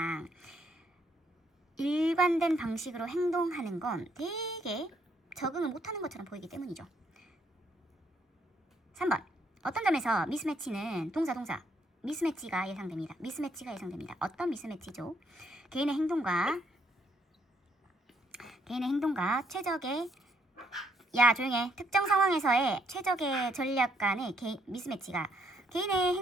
일관된 방식으로 행동하는 건 되게 적응을 못하는 것처럼 보이기 때문이죠. 3번. 어떤 점에서 미스매치는 동사 미스매치가 예상됩니다. 어떤 미스매치죠? 개인의 행동과 최적의 조용해. 특정 상황에서의 최적의 전략 간의 미스매치가 개인의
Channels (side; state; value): both; normal; correlation 0.71